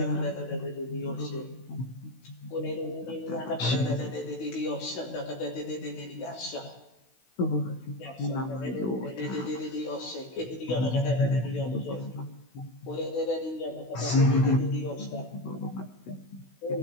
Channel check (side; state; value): right; late; 16 ms